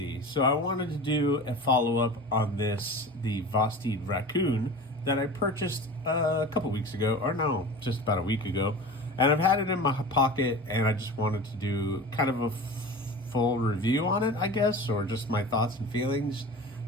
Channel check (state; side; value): normal; both; correlation 0.35